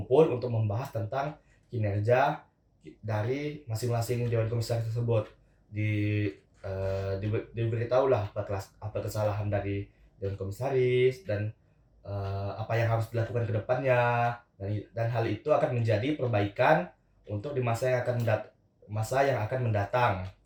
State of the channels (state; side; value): identical; both; correlation 1.00